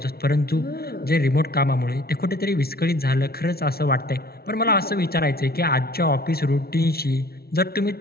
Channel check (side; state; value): right; late; 0.45 ms